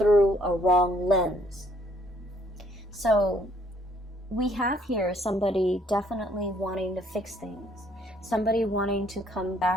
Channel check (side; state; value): both; normal; correlation 0.65